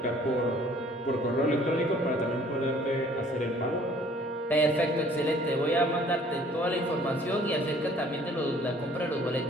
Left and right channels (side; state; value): both; normal; correlation 0.56